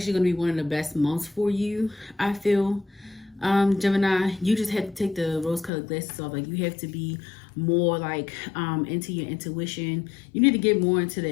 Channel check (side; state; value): right; drops out; at 5.7 s